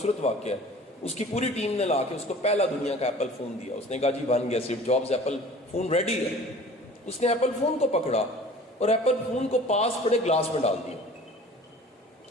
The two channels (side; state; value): both; normal; correlation 0.45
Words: واقعہ ہے, اس کی پوری ٹیم نے لا کے اس کو پہلا دنیا کا ایپل فون دیا. اس نے کہا جی بن گیا, Steve jobs, apple phone ready ہے. اس نے ایپل فون کو پکڑا اور ایپل فون کو پاس پڑے گلاس میں ڈال دیا.